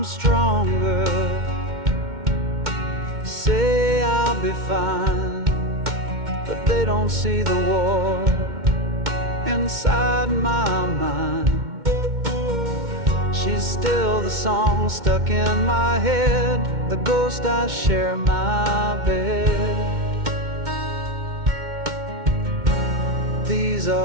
stronger, say I'll be fine, but they don't see the war inside my mind. She's still the song stuck in my head, the ghost I share my bed. These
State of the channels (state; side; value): late; left; 2.1 ms